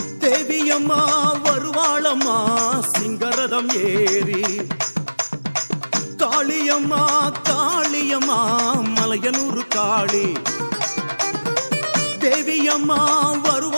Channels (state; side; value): inverted; both; correlation -1.00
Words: தேவியம்மா வருவாளம்மா சிங்கரதம் ஏறி. காளியம்மா காளியம்மா மலையனூர் காளி. தேவியம்மா